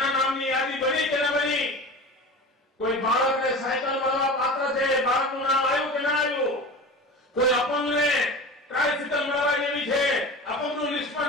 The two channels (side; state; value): both; normal; correlation 0.33